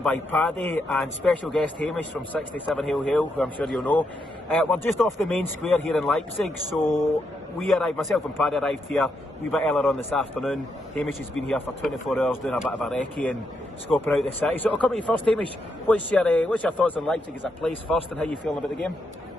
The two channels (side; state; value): both; normal; correlation 0.81